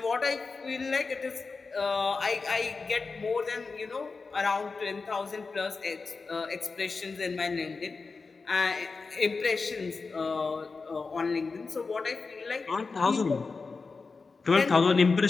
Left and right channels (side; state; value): right; quieter; 4.4 dB